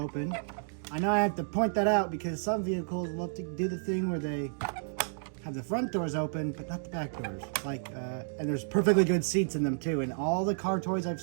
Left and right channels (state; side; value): silent; left; digital silence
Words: I know I have to point that out because some vehicles love to do the thing where they have the front doors open, but not the back doors. And there's perfectly good seats in them too. And all the car toys I've